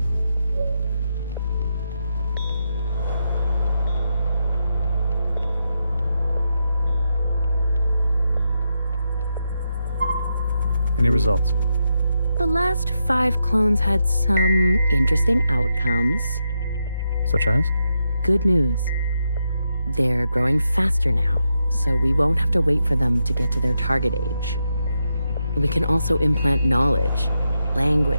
Any results? The last 5 clones had some interesting outcomes. Such as? Good news. They're growing faster now, so we won't have to wait for them to get to their target age. We can also implant knowledge,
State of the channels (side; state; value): both; inverted; correlation -0.84